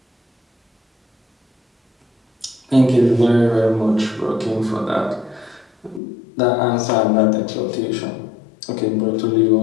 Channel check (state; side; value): drops out; right; at 6.0 s